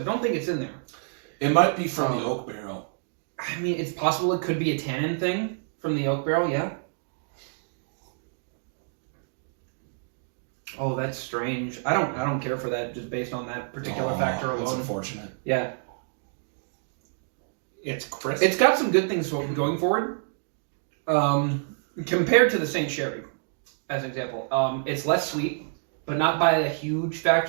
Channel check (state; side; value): silent; left; digital silence